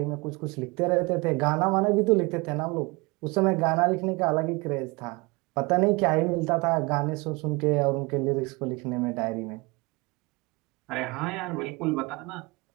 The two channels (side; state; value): left; quieter; 25.7 dB